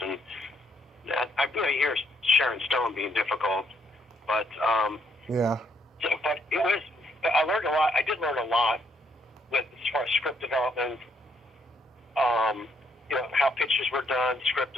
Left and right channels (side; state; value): both; normal; correlation 0.72